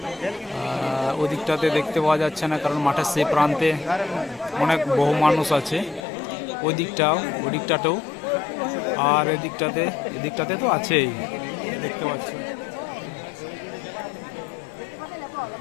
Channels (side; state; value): right; drops out; at 6.0 s